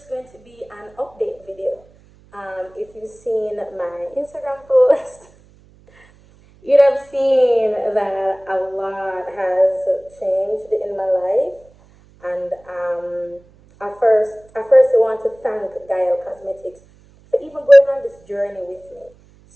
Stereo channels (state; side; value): noise; right; hum, 28 dB below the sound